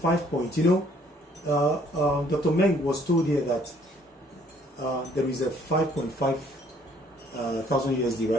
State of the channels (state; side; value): normal; both; correlation 0.62